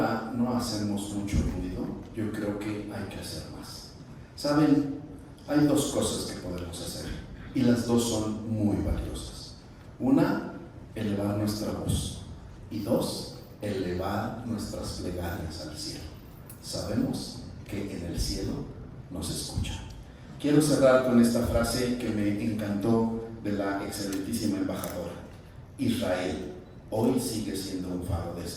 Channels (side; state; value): both; identical; correlation 1.00